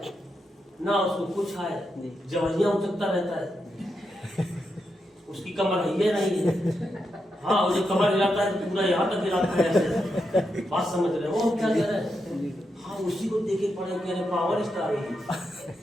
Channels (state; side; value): normal; both; correlation 0.85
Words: ना उसको कुछ आए, जबरिया उचकता रहता है, उसकी कमर है नहीं है। हाँ, वो जो कमर हिलाता है तो पूरा यहाँ तक हिलाता है ऐसे। बात समझ रहे हो क्या कह रहे हैं? हाँ, उसी को देखे पड़े कि अरे पावर स्टार है।